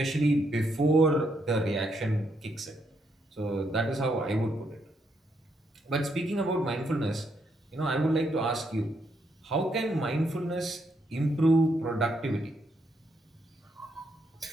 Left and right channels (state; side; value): normal; both; correlation 0.77